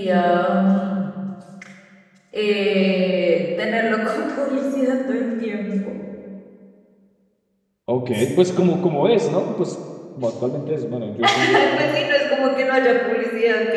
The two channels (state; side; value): identical; both; correlation 1.00